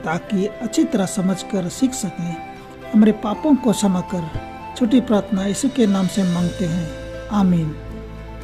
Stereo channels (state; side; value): identical; both; correlation 1.00